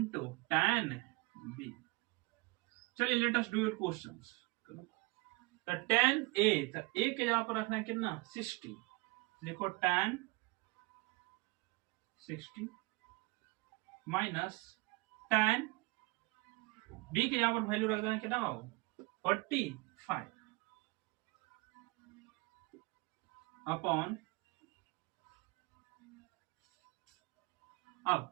tan b। चलिए let us do your questions. तो tan a, तो a के जगह पर रखना है कितना 60, देखो tan 60 माइनस tan b के जगह पर वैल्यू रख देना है कितना 45 अपॉन,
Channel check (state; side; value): quieter; left; 24.3 dB